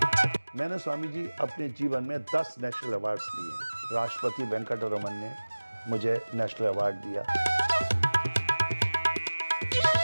मैंने स्वामी जी अपने जीवन में 10 नेशनल अवार्ड्स लिए। राष्ट्रपति वेंकटरमन ने मुझे नेशनल अवार्ड दिया।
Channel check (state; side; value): inverted; both; correlation -1.00